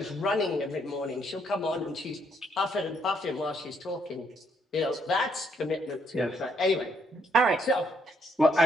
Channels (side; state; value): both; normal; correlation 0.71